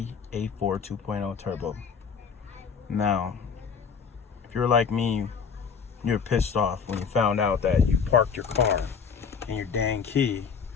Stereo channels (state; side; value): quieter; right; 6.2 dB